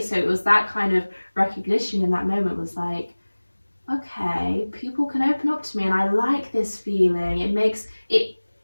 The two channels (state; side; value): inverted; both; correlation -1.00